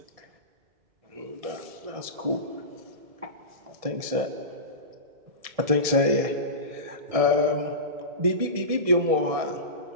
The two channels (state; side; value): late; left; 1.7 ms